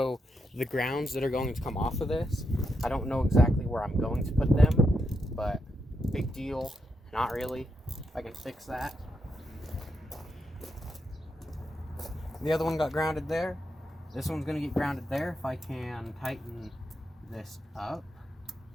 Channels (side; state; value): both; normal; correlation 0.83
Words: the grounds that are going to come off of this. I don't know exactly where I'm going to put them, but big deal, not really. I can fix that. The other one got grounded there. This one's going to get grounded there if I can tighten this up